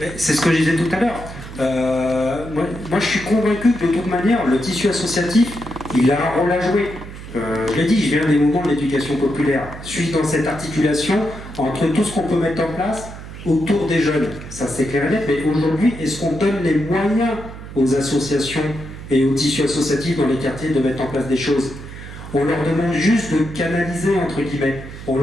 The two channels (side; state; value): right; noise; hum, 13 dB below the sound